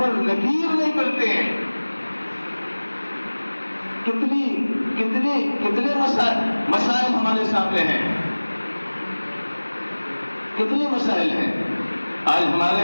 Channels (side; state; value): both; inverted; correlation -1.00